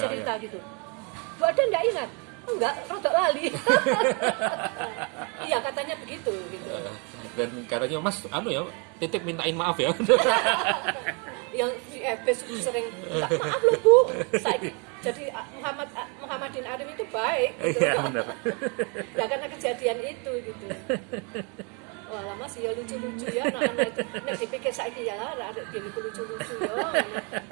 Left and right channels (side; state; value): left; quieter; 34.0 dB